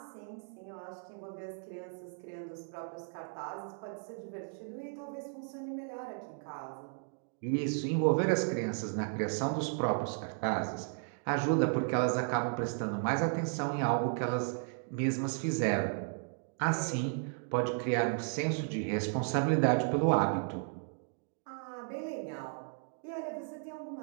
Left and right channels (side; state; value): left; silent; 55 dB below the other